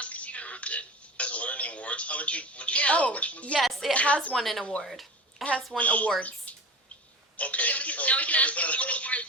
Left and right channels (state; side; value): normal; both; correlation 0.32